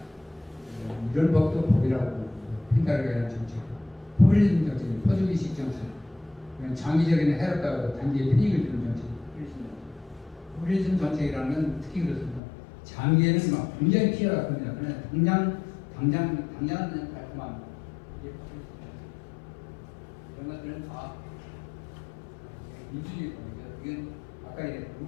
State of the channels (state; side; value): drops out; right; at 12.4 s